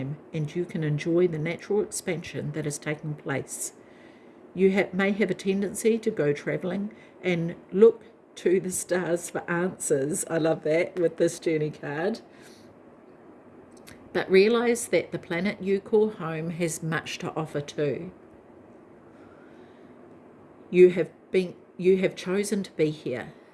and you can enjoy the natural expansion that is taking place. You may have a tendency to go traveling and look to the stars for answers. I love that with this journey card. But realize that the planet you call home has much to offer too. You have chosen to be here.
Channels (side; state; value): both; identical; correlation 1.00